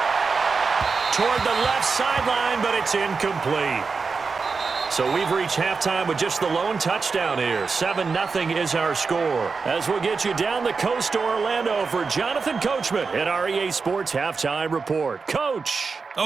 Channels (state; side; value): quieter; left; 4.8 dB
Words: Toward the left sideline, but it's incomplete. So we've reached halftime with just the lone touchdown here. 7-0 is our score. As we'll get you down the coast to Orlando for Jonathan Coachman at our EA Sports Halftime Report. Coach.